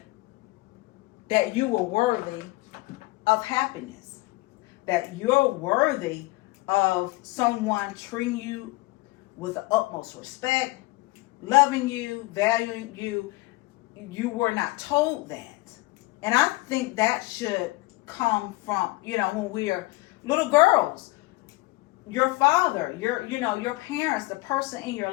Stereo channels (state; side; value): quieter; right; 21.7 dB